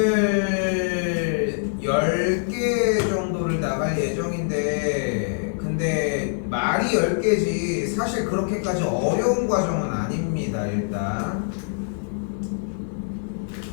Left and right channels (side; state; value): right; silent; digital silence